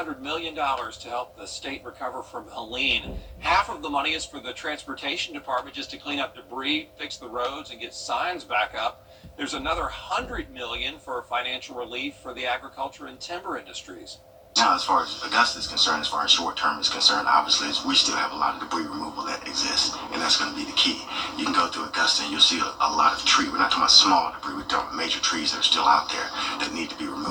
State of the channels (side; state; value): both; identical; correlation 1.00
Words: million to help the state recover from Helene. Half of the money is for the transportation department just to clean up debris, fix the roads, and get signs back up. There's another $100 million for financial relief for the agriculture and timber industries. Now, as far as Augusta is concerned, as far as short term is concerned, obviously we still have a lot of debris removal that exists, and that's going to be the key. You can go through Augusta and you'll see a lot of tree. We're not talking about small debris, we're talking about major trees that are still out there that need to be